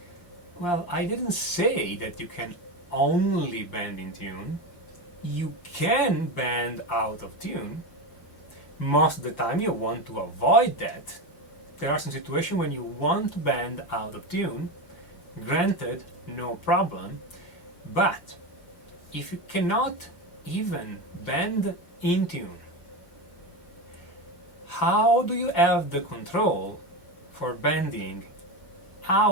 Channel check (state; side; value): late; right; 5.7 ms